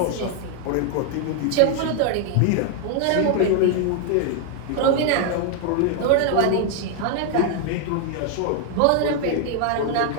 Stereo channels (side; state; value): both; different; correlation 0.00